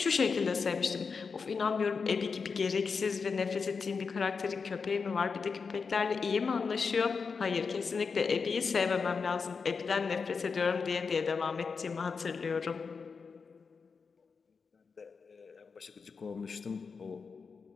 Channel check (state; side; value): quieter; right; 5.2 dB